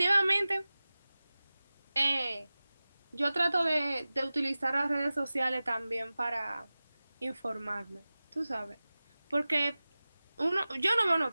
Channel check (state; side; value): inverted; both; correlation -0.97